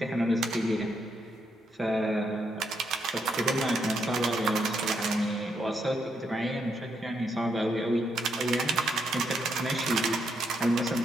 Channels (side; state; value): both; normal; correlation 0.78